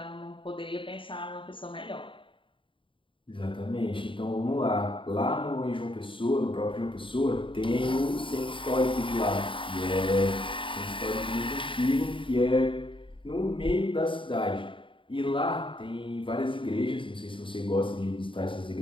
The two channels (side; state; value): right; late; 0.25 ms